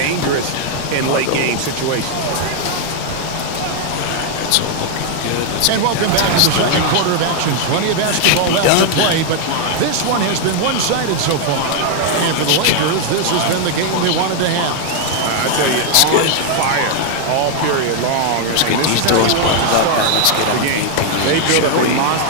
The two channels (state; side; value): different; both; correlation 0.00